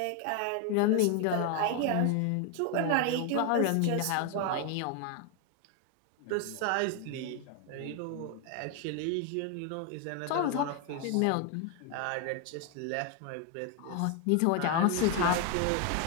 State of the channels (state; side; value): different; both; correlation 0.01